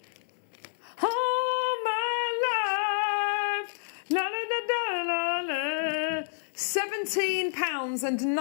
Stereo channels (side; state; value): right; silent; 59 dB below the other